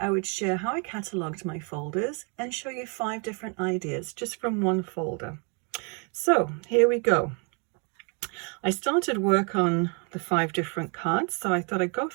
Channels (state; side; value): quieter; left; 36.1 dB